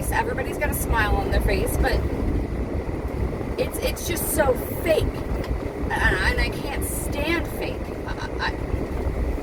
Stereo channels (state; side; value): identical; both; correlation 1.00